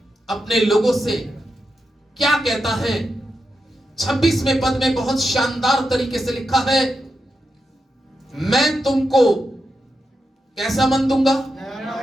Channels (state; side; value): normal; both; correlation 0.87